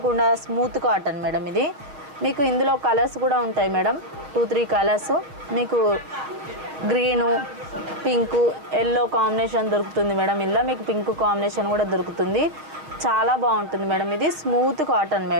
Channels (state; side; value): late; left; 6.7 ms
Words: స్మూత్ కాటన్ మేడం ఇది. మీకు ఇందులో కలర్స్ కూడా ఉంటాయి మేడం, 2-3 కలర్స్. మీకు గ్రీను, పింకు, ఎల్లో కాంబినేషన్ దొరుకుతుంది మేడం. ఇలా మీకు పింక్ కాంబినేషన్ కూడా దొరుకుతుంది. చాలా బాగుంటుంది మేడం. ఇది స్మూత్ కాటన్